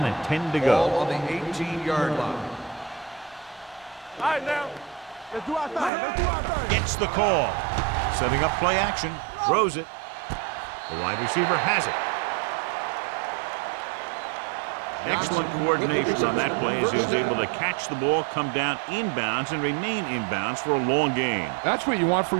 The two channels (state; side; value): drops out; left; at 5.9 s